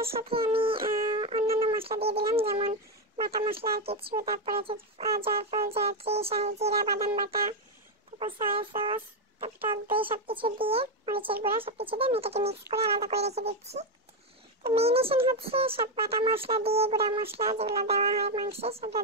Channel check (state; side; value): normal; both; correlation 0.07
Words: সাথে আমি অন্যান্য মশলা দিয়ে দিলাম, যেমন বাটা মশলা আর কিছু, তারপরে জয়ফল, জয়ত্রী, শাহি জিরা, বাদাম বাটা, তারপর সয়া সস, তারপর টক দই, সবকিছু দিয়ে মরিচের গুঁড়া সবকিছু দিয়ে আমি এটাকে মিক্স করে আলাদা করে রেখে দিচ্ছি। তো ম্যারিনেশন সব বাটা মশলা দিয়ে, গুঁড়া মশলা যেগুলো দেওয়া হয় মাংসে সেগুলো